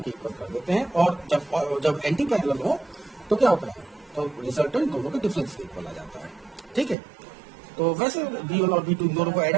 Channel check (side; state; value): left; drops out; at 7.0 s